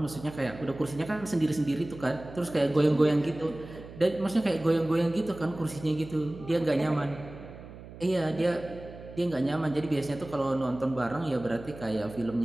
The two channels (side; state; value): right; noise; hum, 15 dB below the sound